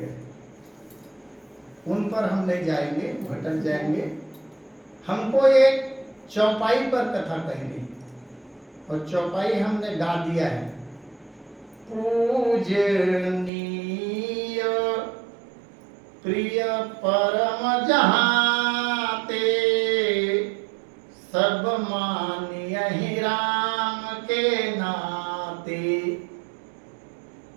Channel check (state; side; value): drops out; left; at 13.5 s